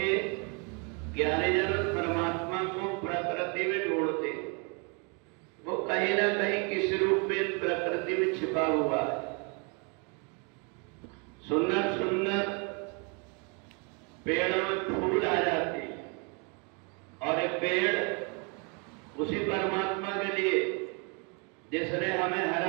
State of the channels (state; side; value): quieter; left; 34.2 dB